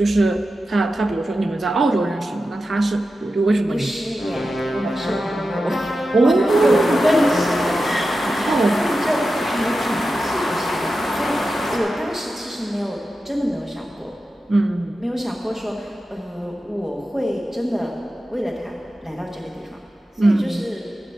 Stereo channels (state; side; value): normal; both; correlation 0.91